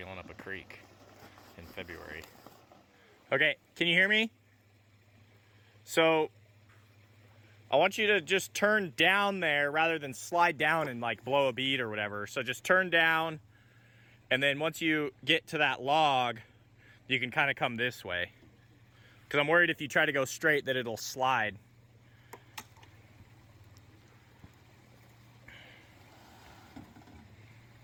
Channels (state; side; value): identical; both; correlation 1.00